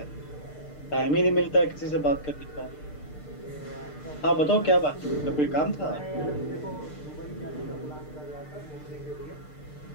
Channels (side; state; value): right; late; 6.7 ms